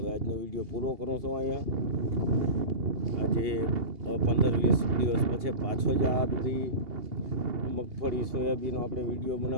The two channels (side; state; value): left; late; 2.8 ms